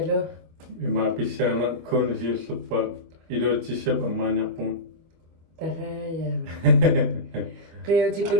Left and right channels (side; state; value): left; late; 25 ms